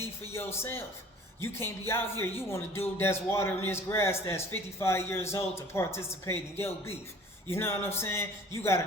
for yourself. You can't be out here. You want a dude that's watering this grass that's 55 years old to participate in your beef. You know what I'm saying? You got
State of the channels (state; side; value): normal; both; correlation 0.49